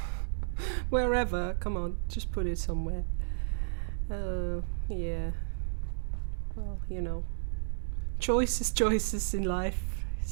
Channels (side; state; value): left; silent; digital silence